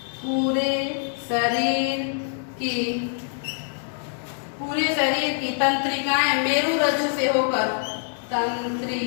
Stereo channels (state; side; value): silent; right; 62 dB below the other